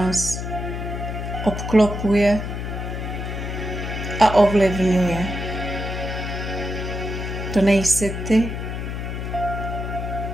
obklopuje a ovlivňuje. To nejsi ty,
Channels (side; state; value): left; noise; hum, 5 dB below the sound